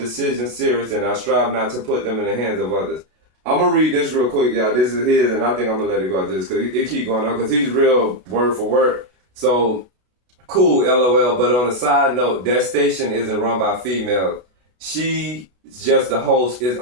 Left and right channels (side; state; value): left; late; 32 ms